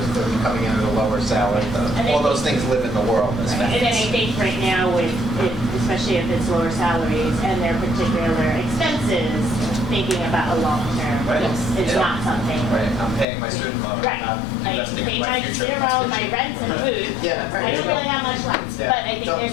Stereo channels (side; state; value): right; drops out; at 13.2 s